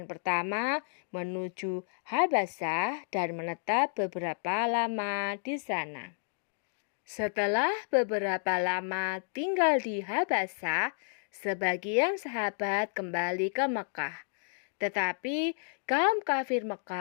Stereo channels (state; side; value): silent; right; digital silence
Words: pertama menuju Habasyah dan menetap beberapa lama di sana. Setelah beberapa lama tinggal di Habasyah, sebagian sahabat kembali ke Mekah. Tetapi kaum kafir